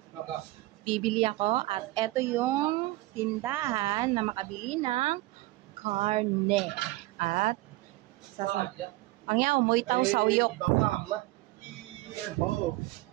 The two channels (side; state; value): left; quieter; 19.2 dB